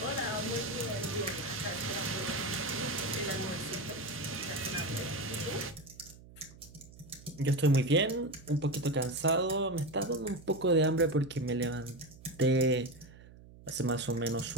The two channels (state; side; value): noise; right; hum, 20 dB below the sound